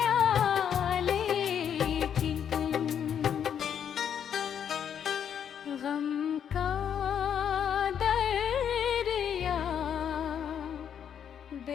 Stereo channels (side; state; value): right; quieter; 8.5 dB